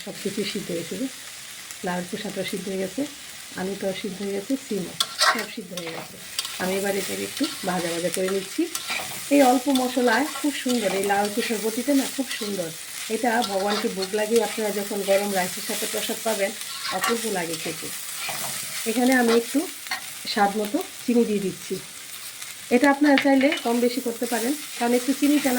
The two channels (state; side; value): identical; both; correlation 1.00